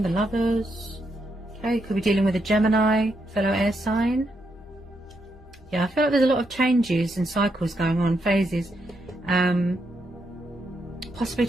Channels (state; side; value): normal; both; correlation 0.80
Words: the Lovers. Okay, could be dealing with a Gemini, fellow air sign. Yeah, I feel like there's a lot of changes and cycles going on, phases. Possibly